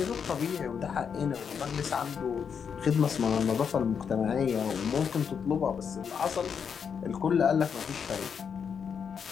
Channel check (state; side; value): quieter; right; 6.9 dB